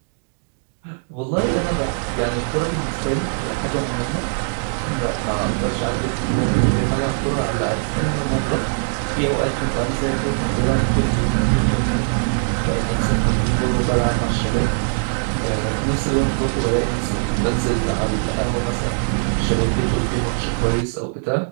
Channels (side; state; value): left; silent; digital silence